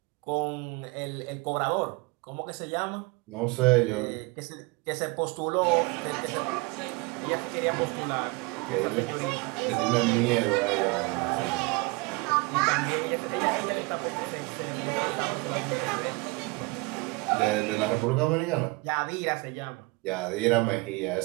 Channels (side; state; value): left; quieter; 25.0 dB